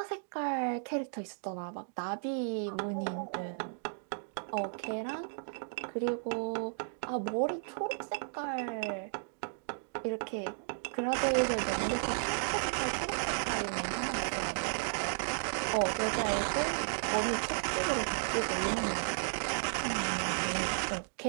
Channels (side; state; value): left; silent; digital silence